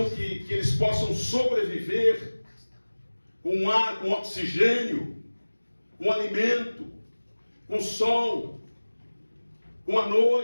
que eles possam sobreviver, com ar, com oxigênio, com alimento, com sol, com a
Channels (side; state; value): both; inverted; correlation -1.00